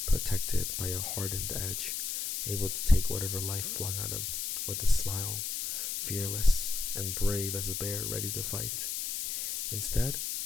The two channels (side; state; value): left; noise; hiss, 2 dB below the sound